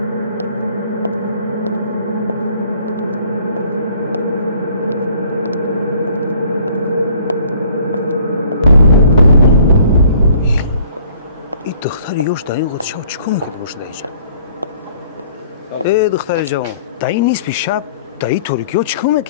این دختر یوش در این قد شب چیکار میکنه باشه اینجا؟ ای دختر جوان، در این نیست پیش شب در این تاریکی ها چیکار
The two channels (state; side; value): inverted; both; correlation -0.57